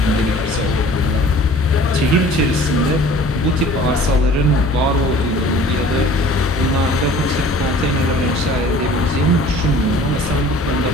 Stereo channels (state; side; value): normal; both; correlation 0.48